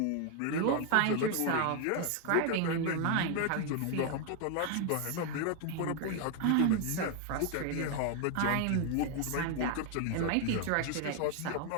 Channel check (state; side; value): different; both; correlation 0.01